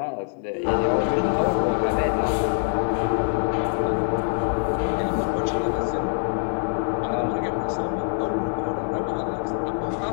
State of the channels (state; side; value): silent; right; digital silence